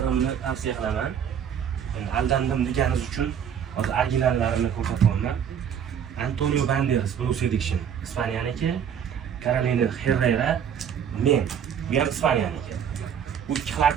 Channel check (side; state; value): left; quieter; 8.3 dB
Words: tavsiya qilaman. Aldandim deganingiz uchun hozir originallarini ko'rsatyapman. Antonio Banderas, Bruce Addiction, Ispanyaniki, Carolina Herrera, men, bu ham Ispanyaniki. Bu ikki